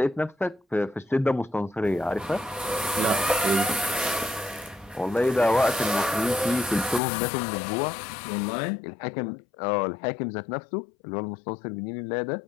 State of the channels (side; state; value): right; drops out; at 7.0 s